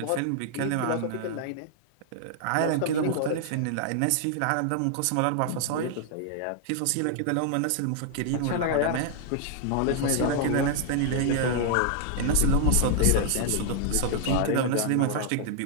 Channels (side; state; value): both; different; correlation -0.01